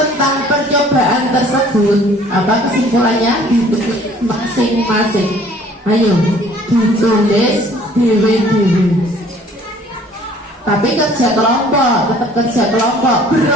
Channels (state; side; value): normal; both; correlation 0.54